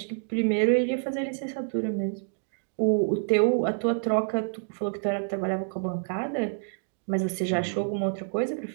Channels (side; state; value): left; silent; digital silence